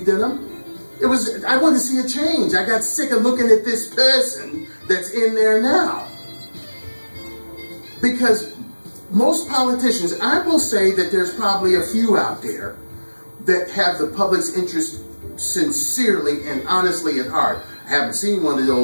in him. It was, I wanted to see a change. I got sick of looking at this person that's in there now. Because most politicians, I will say that there's probably a few out there that have the public's interest sincerely and honestly at heart. I haven't seen one of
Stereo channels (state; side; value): inverted; both; correlation -1.00